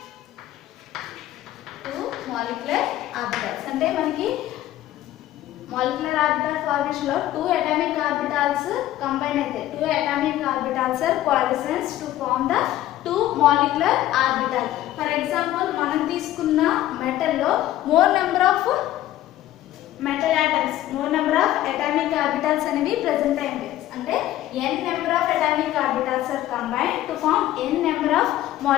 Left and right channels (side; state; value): right; quieter; 13.9 dB